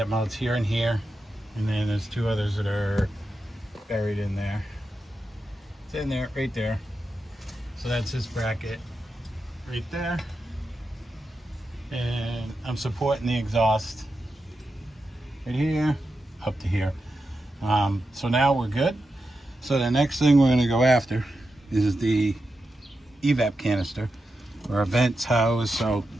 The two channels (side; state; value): both; normal; correlation 0.89